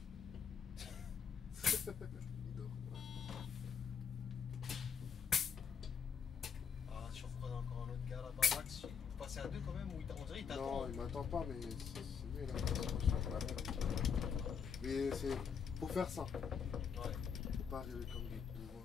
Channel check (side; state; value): right; quieter; 6.8 dB